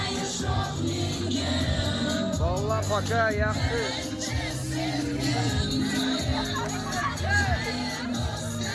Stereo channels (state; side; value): identical; both; correlation 1.00